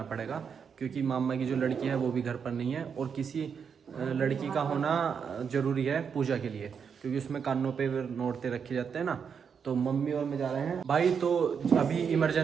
पड़ेगा, क्योंकि मामा की जो लड़की है वो भी घर पर नहीं है और किसी लड़की का होना ज़रूरी है पूजा के लिए, क्योंकि उसमें कानों पे नोटते रखे जाते हैं ना। तो मम्मी और मैं जा रहे हैं भाई। तो अभी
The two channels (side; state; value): left; quieter; 6.7 dB